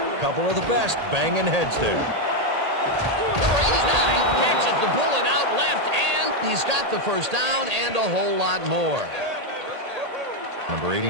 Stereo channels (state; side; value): late; left; 1.8 ms